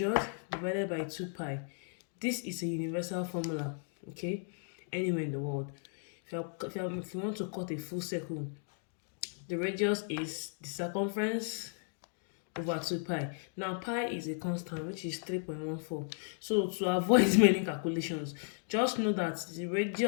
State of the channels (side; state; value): right; silent; 54 dB below the other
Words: divided by 2 pi. This is a universal formula, okay, anywhere in the world. If you want to cut a full circle, the radius is the circumference over 2 pi. Now pi is a constant, which is 3.14. So to avoid many calculations, just know that the